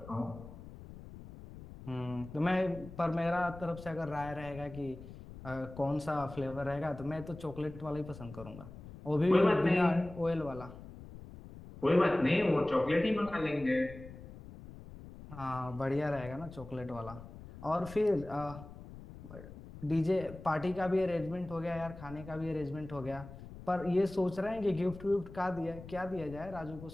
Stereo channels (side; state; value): left; noise; rumble, 15 dB below the sound